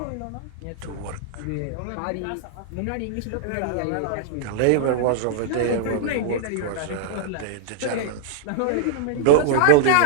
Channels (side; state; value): both; different; correlation -0.01